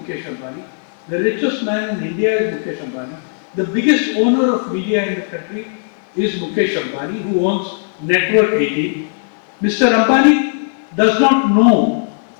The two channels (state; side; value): silent; right; digital silence